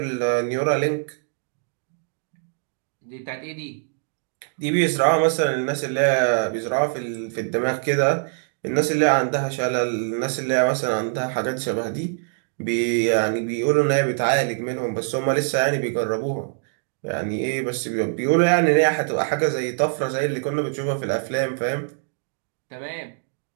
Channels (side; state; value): left; silent; digital silence